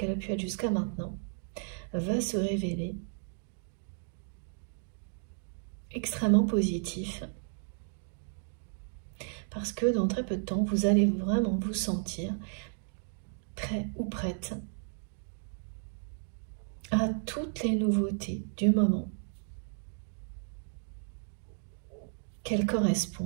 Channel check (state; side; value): silent; left; 55 dB below the other